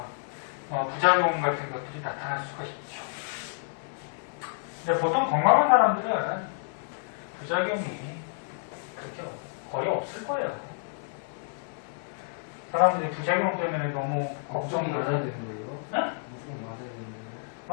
부작용 같은 것들이 나타날 수가 있죠. 근데 보통 건강한 사람들은 부작용이 그렇게 거의 없을 거예요. 사람들이 부작용 때문에 너무 걱정이 걱정을 맞아야 해요. 되는 거예요? 응? 무조건 맞아야 되는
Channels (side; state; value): right; silent; 58 dB below the other